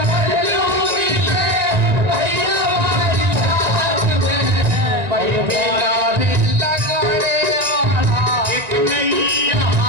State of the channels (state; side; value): late; left; 1.9 ms